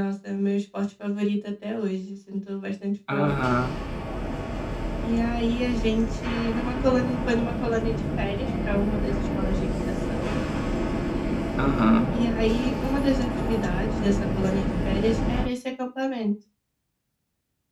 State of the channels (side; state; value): both; identical; correlation 1.00